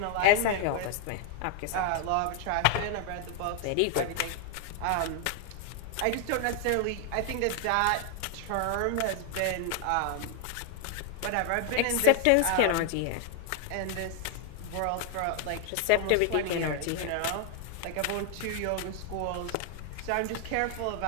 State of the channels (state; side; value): different; both; correlation 0.00